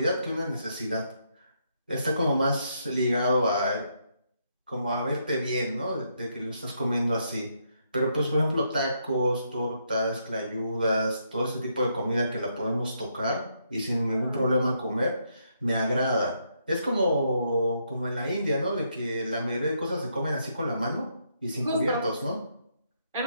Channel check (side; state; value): both; inverted; correlation -0.77